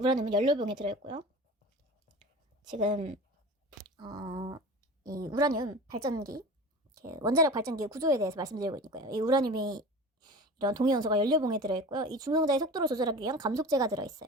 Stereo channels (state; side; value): normal; both; correlation 0.35